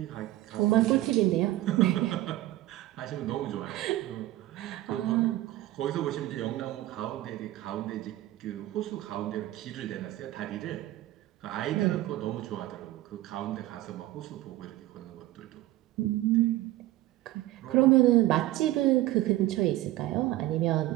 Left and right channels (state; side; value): quieter; left; 16.0 dB